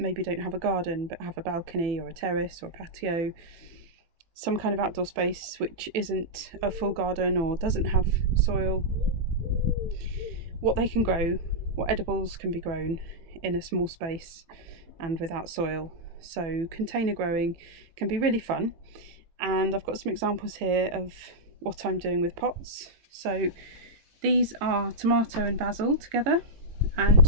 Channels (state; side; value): late; left; 18 ms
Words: don't have a garden but have a balcony or a terrace or a patio, some kind of outdoor space which isn't a full garden or doesn't have soil, what they can grow, what edibles can be grown in a small space and without soil. So container growing can be really fun, and I've got some examples here of what I'm doing with pots. So these are tomato and basil together, and